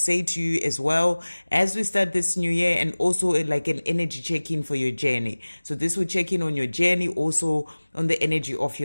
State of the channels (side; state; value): both; inverted; correlation -1.00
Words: to you as well as we start this new year, and also like an energy check-in for your journey. So this will check in on your journey, also on the energy of